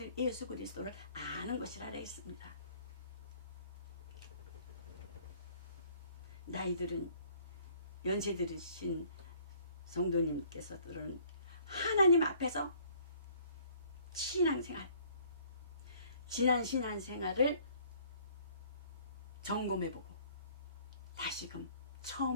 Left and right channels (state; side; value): inverted; both; correlation -0.57